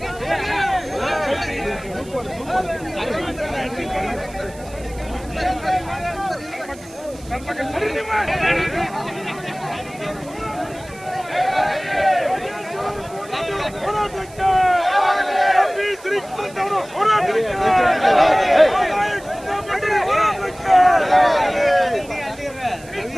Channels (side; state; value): right; noise; hiss, 22 dB below the sound